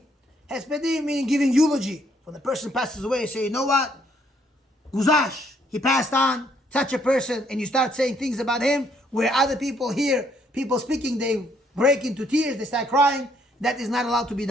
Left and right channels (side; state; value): both; normal; correlation 0.68